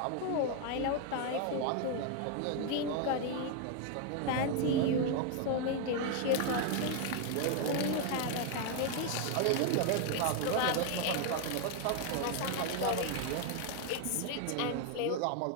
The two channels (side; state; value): both; different; correlation 0.01